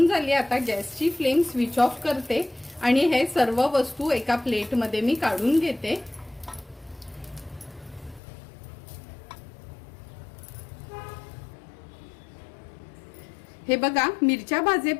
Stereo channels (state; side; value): drops out; right; at 8.2 s